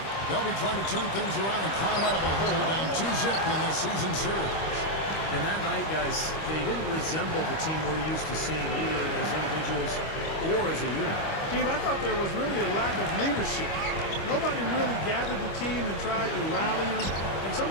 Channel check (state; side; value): late; right; 25 ms